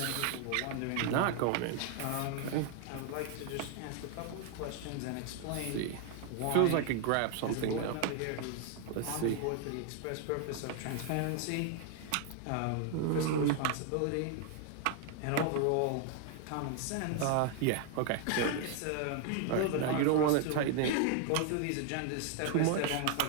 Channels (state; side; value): different; both; correlation 0.00